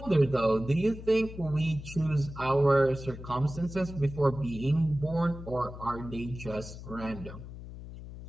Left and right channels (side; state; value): left; noise; hum, 12 dB below the sound